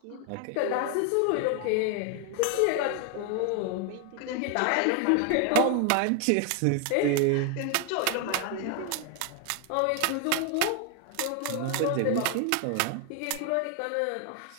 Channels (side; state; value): both; different; correlation 0.01